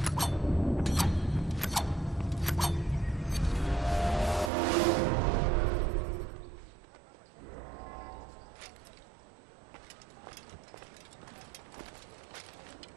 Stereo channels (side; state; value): left; drops out; at 4.5 s